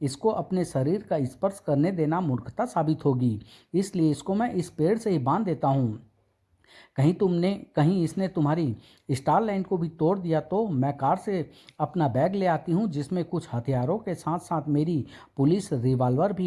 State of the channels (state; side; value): identical; both; correlation 1.00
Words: अपने शरीर का स्पर्श करने देना मूर्खता साबित होगी। इसलिए इसको मैं इस पेड़ से ही बांध देता हूँ। कहीं इसने तुम्हारी स्टार लाइन को भी तोड़ दिया तो मैं कार से अपना बैग ले आती हूँ जिसमें कुछ हथियारों के साथ साथ मेरी पुलिस रिवॉल्वर भी